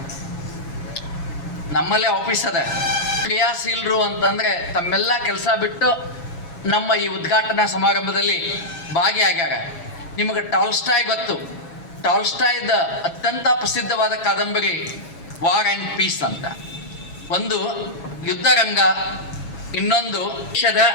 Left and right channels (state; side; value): late; right; 7.2 ms